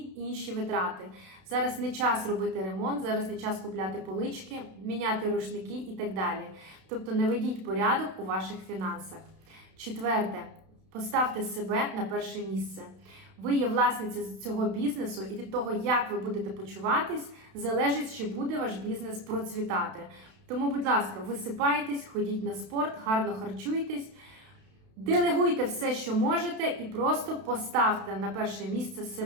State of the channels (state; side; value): late; left; 32 ms